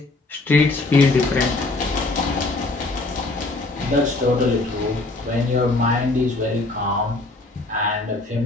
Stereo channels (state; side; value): quieter; right; 3.1 dB